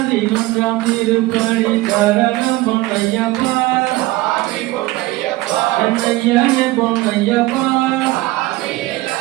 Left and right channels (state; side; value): quieter; left; 19.0 dB